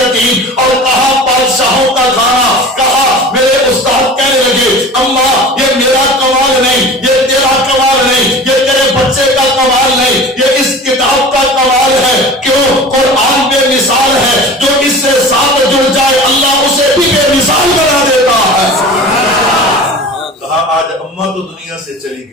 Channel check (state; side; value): normal; both; correlation 0.38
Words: اور کہاں بادشاہوں کا کھانا؟ کہا میرے استاد کہنے لگے اماں یہ میرا کمال نہیں، یہ تیرا کمال نہیں، یہ تیرے بچے کا کمال نہیں، یہ اس کتاب کا کمال ہے۔ کیوں؟ قرآن بے مثال ہے، جو اس سے ساتھ جڑ جائے اللہ اسے بھی بے مثال بنا دیتا ہے۔ کہا آج اماں تو دنیا سے چلی